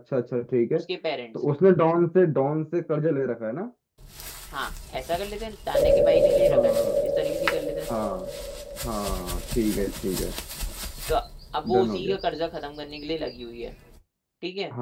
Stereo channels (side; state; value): both; identical; correlation 1.00